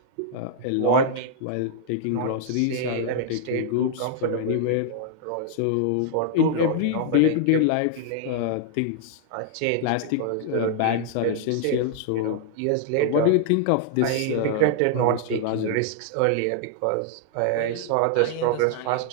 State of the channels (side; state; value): both; different; correlation -0.01